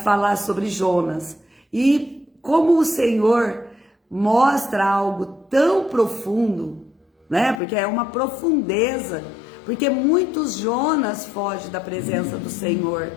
falar sobre Jonas. E como o Senhor mostra algo tão profundo, né? Porque é uma profundeza. Porque muitos Jonas fogem da presença do Senhor.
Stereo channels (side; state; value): right; drops out; at 7.6 s